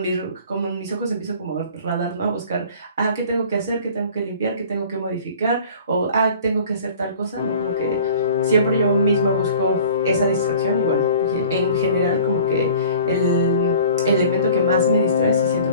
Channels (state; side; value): inverted; both; correlation -0.46